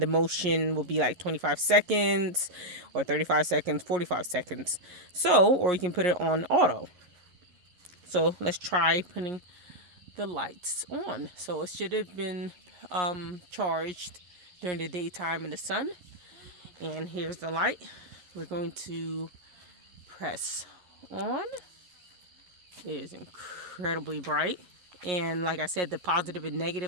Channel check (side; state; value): left; late; 11 ms